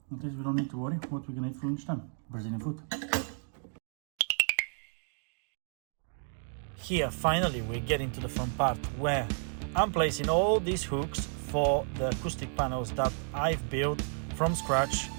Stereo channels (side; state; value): left; silent; 56 dB below the other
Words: at least we don't need to worry what we're gonna eat for lunchtime. Brazilian food. Here, finally, we're getting to the fun part where I'm placing all these hooks for the acoustic panels that I've built from scratch